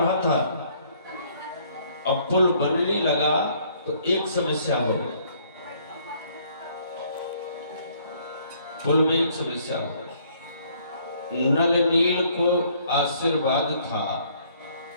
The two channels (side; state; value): both; inverted; correlation -0.63